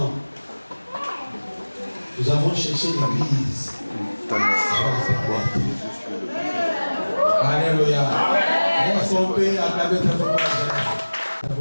Nous avons cherché l'église. Alléluia. On peut acclamer très fort.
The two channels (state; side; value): inverted; both; correlation -1.00